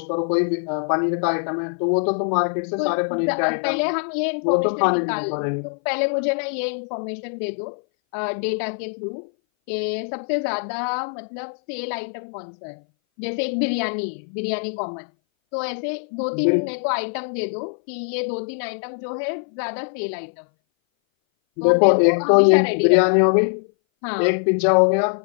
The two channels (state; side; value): silent; right; 59 dB below the other